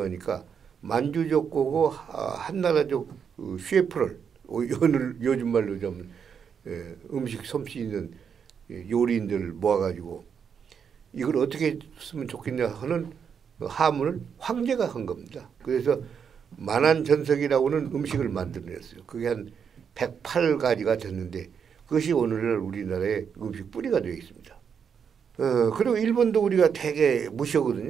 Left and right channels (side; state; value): left; quieter; 7.1 dB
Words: 만주족 거고 한나라족 셰프를 요즘 말로 좀 음식 솜씨 있는 요리인들을 모아가지고 이걸 어떻게 쓰면 좋겠냐 하는 하문을 황제가 한 겁니다. 그래서 만안전석이라고는 음식을 만들어냈어요. 그게 한 108가지가 됐는데 그것이 오늘날 우리나라의 음식 뿌리가 되어 있습니다. 그리고 일본도 우리가 되게